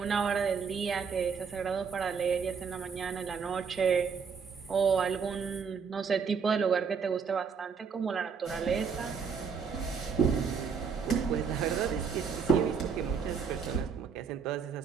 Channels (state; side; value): quieter; left; 6.1 dB